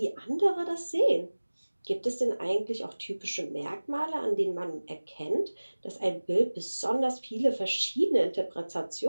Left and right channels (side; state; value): both; inverted; correlation -1.00